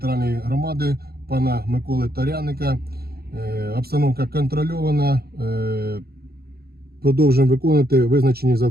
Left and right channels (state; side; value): late; left; 0.45 ms